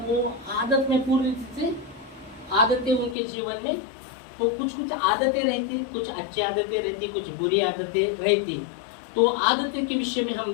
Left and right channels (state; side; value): drops out; right; at 3.2 s